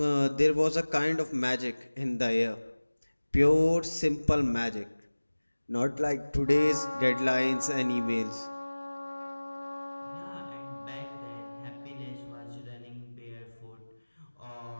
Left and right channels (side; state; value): both; inverted; correlation -1.00